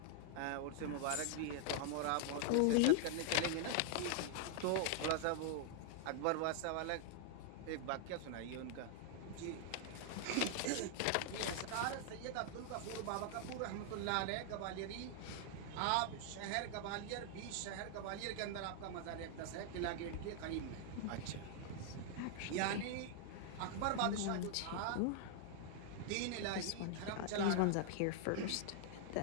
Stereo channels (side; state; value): both; different; correlation 0.00